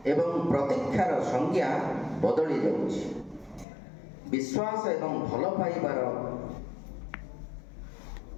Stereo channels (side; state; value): right; drops out; at 3.7 s